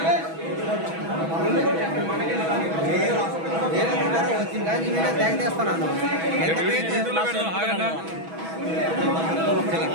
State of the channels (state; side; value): late; left; 6.1 ms